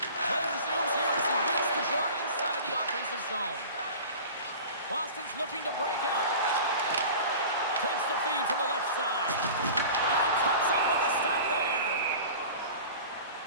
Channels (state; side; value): inverted; both; correlation -0.38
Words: Play resumes here as he wins the draw inside the offensive zone. Boston's looking to break out. Takes the feed from the left side. And he comes up with a stop there.